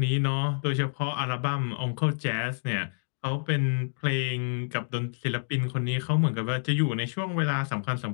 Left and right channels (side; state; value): right; silent; digital silence